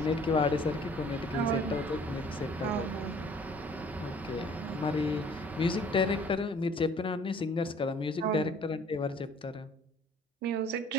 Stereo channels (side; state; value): both; normal; correlation 0.54